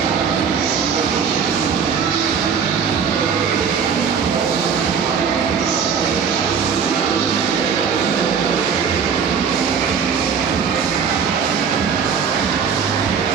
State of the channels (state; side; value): quieter; left; 6.6 dB